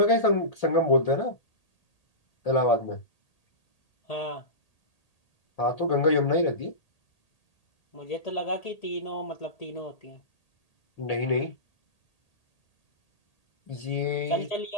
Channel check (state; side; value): late; right; 1.8 ms